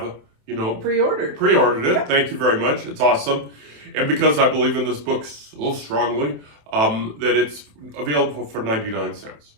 pre-ordered it. Yep. Thank you very much. It's awesome. And because I believe in this book so strongly, that it's available for 99 cents.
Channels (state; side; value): late; left; 27 ms